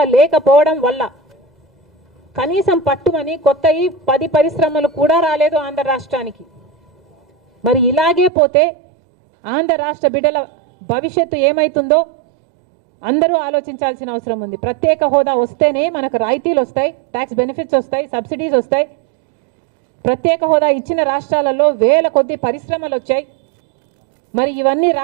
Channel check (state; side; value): drops out; left; at 8.3 s